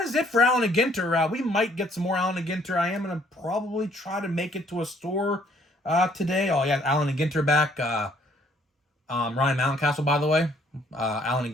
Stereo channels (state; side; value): normal; both; correlation 0.63